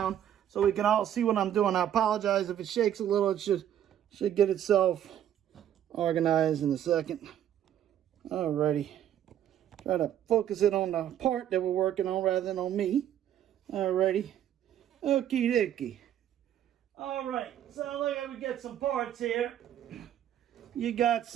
so we can all see what I'm doing. I apologize if it shakes a little. It should get itself organized in a second. Alrighty. Try to focus it on the part that we're working on rather than on me. Alrighty. Okie dokie. Alright. So look at we get some parts here. You got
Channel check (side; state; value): left; quieter; 10.7 dB